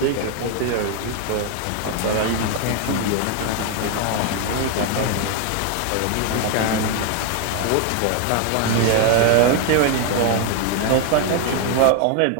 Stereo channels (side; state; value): both; different; correlation 0.01